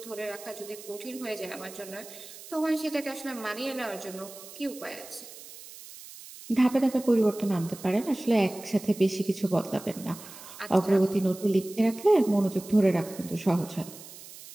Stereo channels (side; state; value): right; noise; hiss, 16 dB below the sound